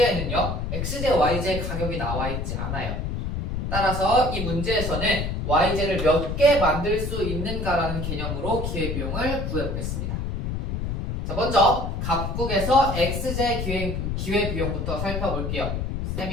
X제, Y제 가격이 나와 있지 않아요. 따라서 이 문제에서는 Y제를 몇 개 만들 수 있는가라는 개념으로 기회비용을 구해보겠습니다. 자, 먼저 각국에서 X제 기회비용부터 살펴볼게요.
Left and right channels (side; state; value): left; noise; rumble, 3 dB below the sound